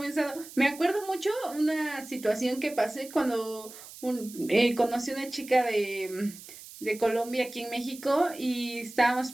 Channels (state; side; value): noise; right; hiss, 16 dB below the sound